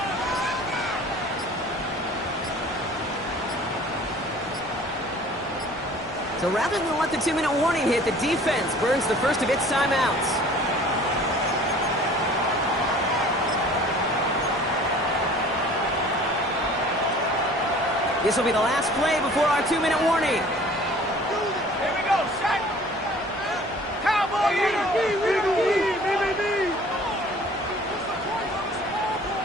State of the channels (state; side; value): normal; both; correlation 0.49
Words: So rather than let the 2-minute warning hit, the defense burns the first of its timeouts. This will be the last play before our 2-minute warning. Here we go, set. Cowboy,